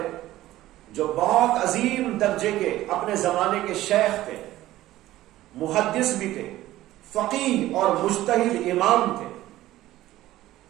جو بہت عظیم درجے کے اپنے زمانے کے شیخ تھے، محدث بھی تھے، فقیہ اور مجتہد امام تھے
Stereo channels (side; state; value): left; quieter; 15.4 dB